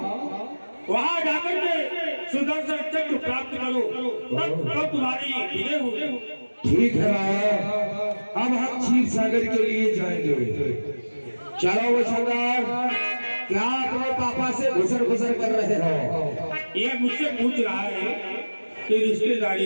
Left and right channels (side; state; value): both; inverted; correlation -1.00